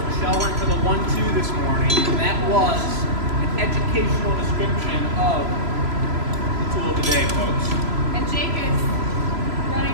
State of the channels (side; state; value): left; late; 3.0 ms